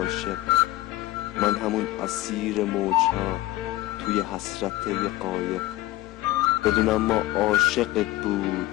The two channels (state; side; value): quieter; right; 16.5 dB